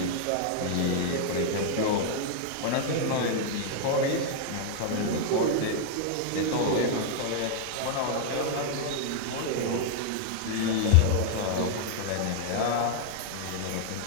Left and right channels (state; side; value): different; both; correlation -0.01